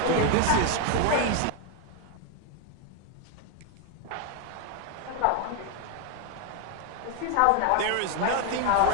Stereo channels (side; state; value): both; different; correlation 0.01